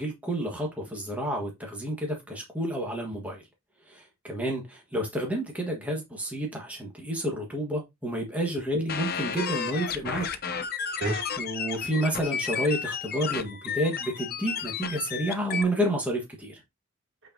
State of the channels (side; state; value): both; normal; correlation 0.44